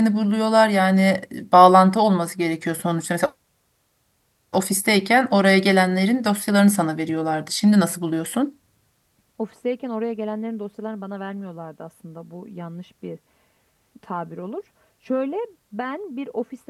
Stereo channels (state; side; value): identical; both; correlation 1.00